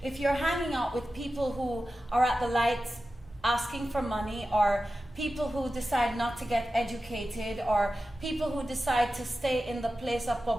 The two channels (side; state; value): both; normal; correlation 0.93